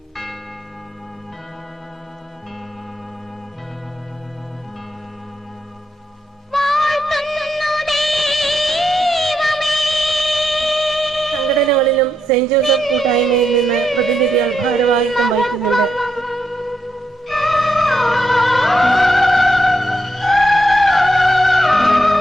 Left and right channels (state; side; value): normal; both; correlation 0.81